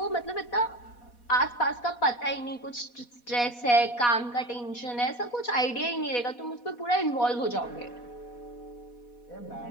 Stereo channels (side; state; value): right; late; 4.1 ms